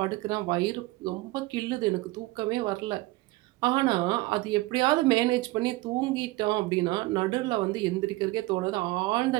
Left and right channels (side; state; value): left; quieter; 20.4 dB